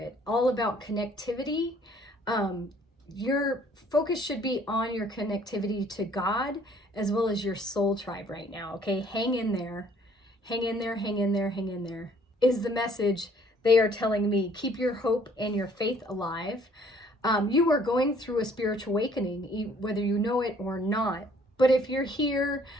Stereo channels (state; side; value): normal; both; correlation 0.60